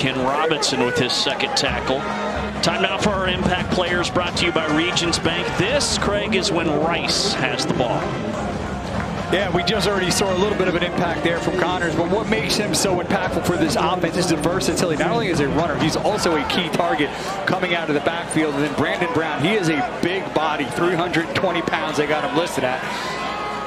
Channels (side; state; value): both; identical; correlation 1.00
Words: Robinson with his 2nd tackle. Time now for our impact players, brought to you by Regions Bank. This, Craig, is when Rice has the ball. Yeah, we just already saw a little bit of an impact there from Connors, but what makes him so impactful for this offense is the versatility. Not only is he a runner, he's also a key target coming out of the backfield. And then Brandon Brown, he is a big body, 320 pounds they got him listed at.